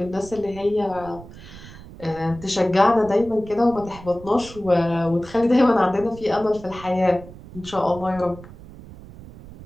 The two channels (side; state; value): right; noise; rumble, 17 dB below the sound